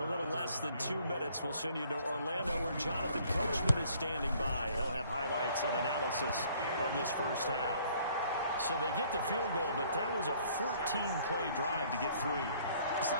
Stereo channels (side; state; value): both; inverted; correlation -0.60